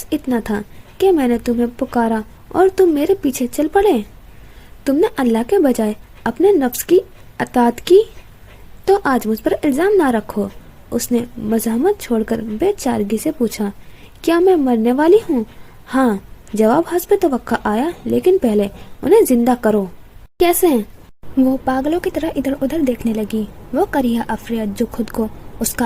इतना था कि मैंने तुम्हें पुकारा और तुम मेरे पीछे चल पड़े। तुमने अल्लाह के बजाय अपने नफ्स की अताअत की, तो आज मुझ पर इल्जाम ना रखो। उसने मज़ाहमत छोड़कर बेचारगी से पूछा, क्या मैं मरने वाली हूँ? हाँ, जवाब हस्ब तवक्का आया, लेकिन पहले उन्हें जिंदा करो। कैसे हैं? वो पागलों की तरह इधर उधर देखने लगी। वो करिया अफरियत जो खुद को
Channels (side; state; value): both; identical; correlation 1.00